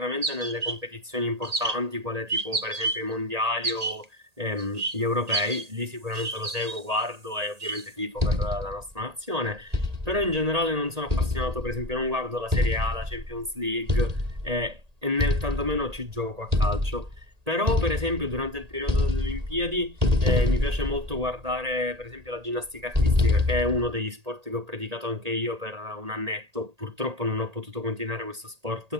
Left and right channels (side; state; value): left; late; 1.8 ms